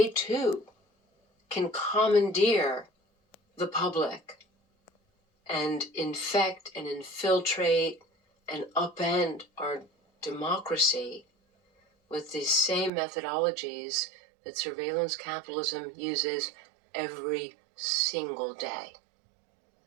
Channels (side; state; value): left; drops out; at 12.9 s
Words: too can commandeer the public and infect and infiltrate and upend our democracy with these same methodologies that surveillance capitalism uses every single day.